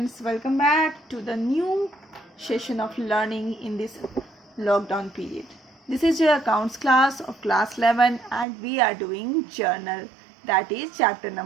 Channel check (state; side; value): drops out; left; at 8.5 s